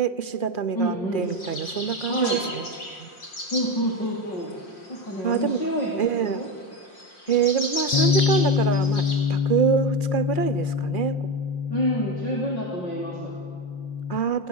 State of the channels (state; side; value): late; right; 5.6 ms